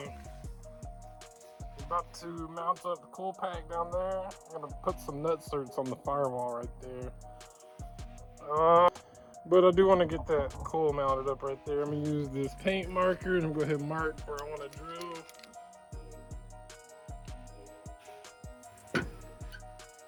about to mount up the cool pack down there. I'm gonna put some nut certs on the firewall right there. But I do want to get that coil mounted up right there. I'm gonna use this paint marker and I'm gonna go ahead and mark where I want to drill.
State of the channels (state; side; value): identical; both; correlation 1.00